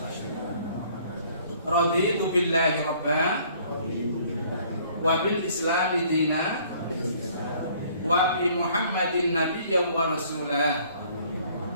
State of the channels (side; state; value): both; inverted; correlation -0.58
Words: Raditu billahi rabba wa bil islami dina wa bi Muhammadin nabiyyan wa rasulah.